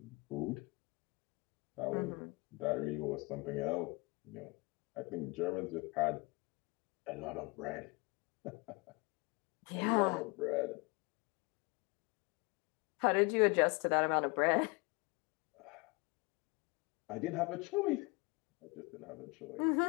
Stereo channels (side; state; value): right; quieter; 27.2 dB